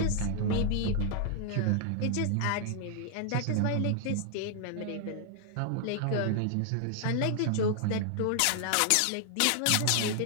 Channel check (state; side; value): different; both; correlation 0.00